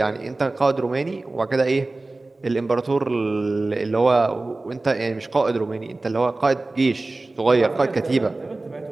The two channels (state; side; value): quieter; left; 3.1 dB